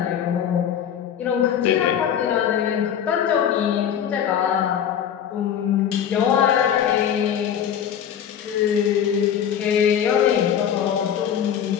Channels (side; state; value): right; quieter; 9.0 dB